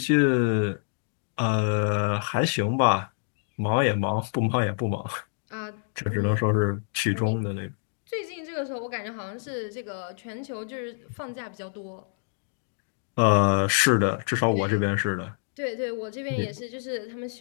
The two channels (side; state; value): right; silent; digital silence